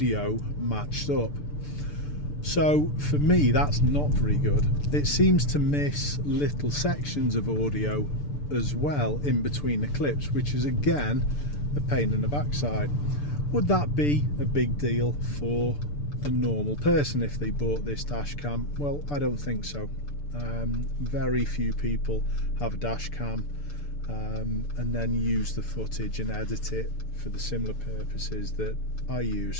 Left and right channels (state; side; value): late; right; 6.8 ms